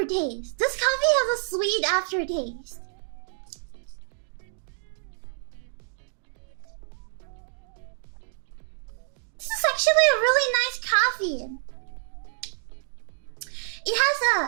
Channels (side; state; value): left; silent; digital silence